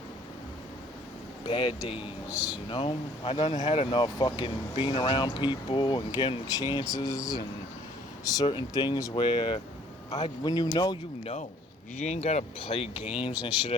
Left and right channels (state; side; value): normal; both; correlation 0.58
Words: bad days, you know? I done had enough fucking being around people and getting chances and certain things where when you know, you know. You ain't gotta play games and shit